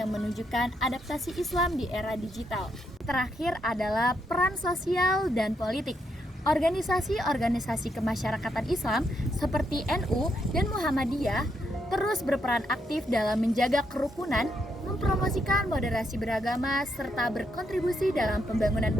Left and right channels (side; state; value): both; normal; correlation 0.78